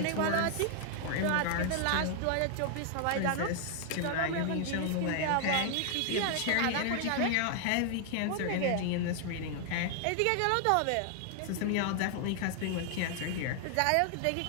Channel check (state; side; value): different; both; correlation 0.00